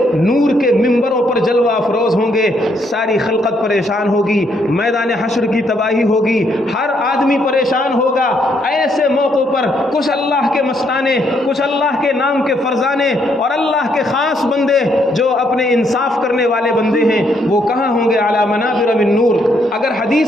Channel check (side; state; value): both; normal; correlation 0.73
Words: نور کے ممبروں پر جلوہ افروز ہوں گے. ساری خلقت پریشان ہوگی, میدان حشر کی تباہی ہوگی, ہر آدمی پریشان ہوگا. ایسے موقعوں پر کچھ اللہ کے مستانے, کچھ اللہ کے نام کے فرزانے اور اللہ کے خاص بندے جو اپنے انصاف کرنے والے بندے ہیں, وہ کہاں ہوں گے؟ علی منابر من نور. اگر